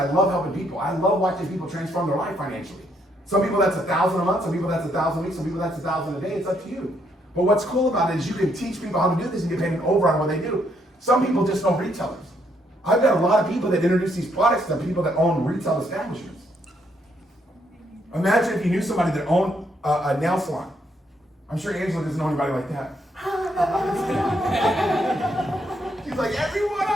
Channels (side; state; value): both; normal; correlation 0.73